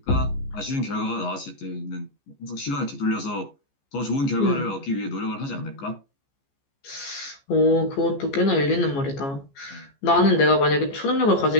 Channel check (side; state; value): right; late; 15 ms